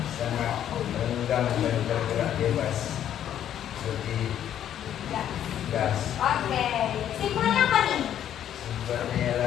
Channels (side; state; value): right; quieter; 10.5 dB